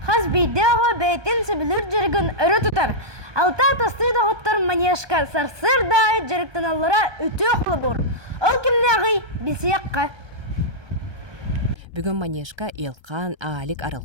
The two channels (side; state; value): left; late; 1.2 ms